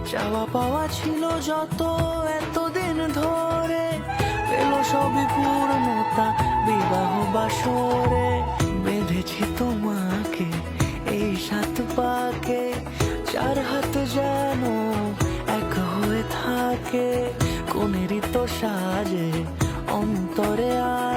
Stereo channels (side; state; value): both; identical; correlation 1.00